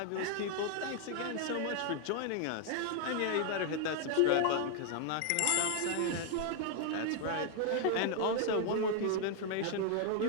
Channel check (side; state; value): both; different; correlation 0.00